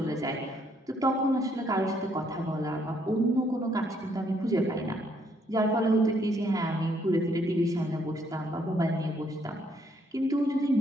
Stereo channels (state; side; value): normal; both; correlation 0.69